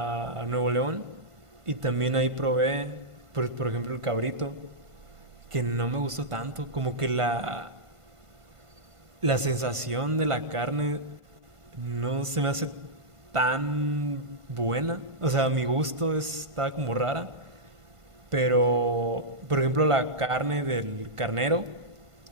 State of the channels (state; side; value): late; left; 1.5 ms